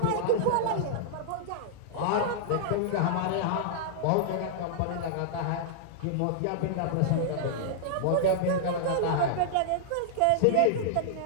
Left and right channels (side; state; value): both; different; correlation -0.02